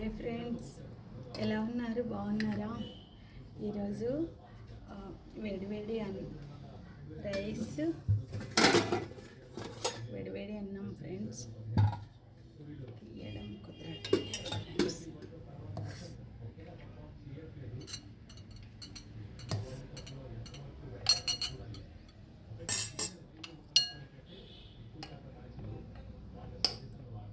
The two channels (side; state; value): both; identical; correlation 1.00